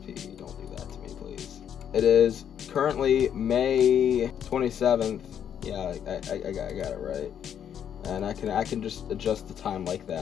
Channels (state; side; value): quieter; right; 9.0 dB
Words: that to me, please. It is currently May 27th. Yeah, I got it right. And I can just adjust the time like